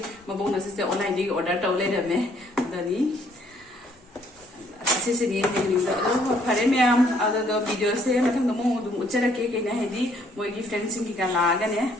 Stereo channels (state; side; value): normal; both; correlation 0.65